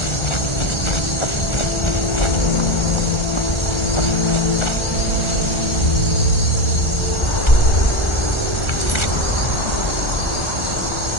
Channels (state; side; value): late; right; 1.4 ms